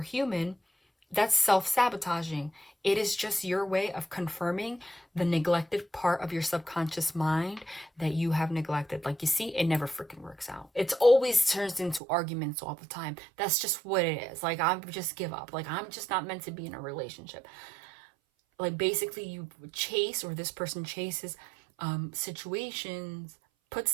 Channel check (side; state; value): left; drops out; at 12.0 s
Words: that's self-sabotaging. It is just your way of confirming the neglected part of your subconscious mind that you have neglected. Like, you see, it never freaking works out. It's always turns into arguments all the time. That's just what it is. Like, I just give up. Like, I'm just not meant to be in a relationship. Like, basically you chase, or this person chases situations, puts